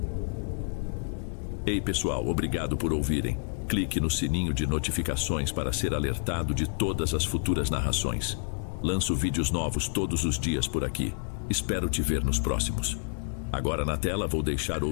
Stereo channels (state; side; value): silent; right; digital silence